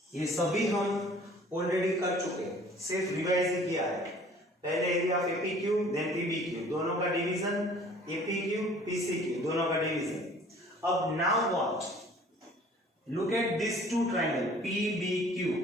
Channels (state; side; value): normal; both; correlation 0.51